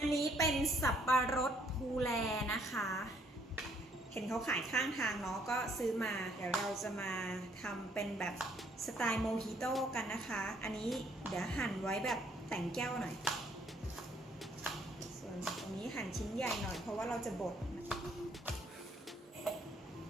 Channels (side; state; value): both; normal; correlation 0.66